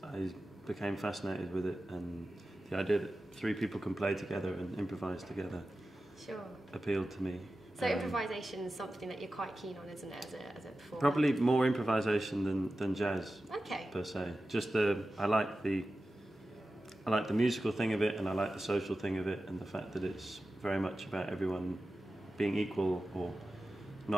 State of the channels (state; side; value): normal; both; correlation 0.94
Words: I became fascinated with it, and the idea that three people can play together and improvise together appealed to me. So improvisation is something that you're quite keen on, isn't it, as a performer? Probably more improvisation than jazz, per se. Just I like the musical thing of it, and I like the social thing of it, and the fact that it's very much about everyone being equal or